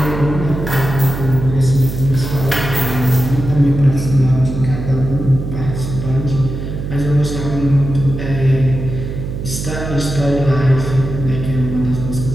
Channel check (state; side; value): noise; right; hum, 6 dB below the sound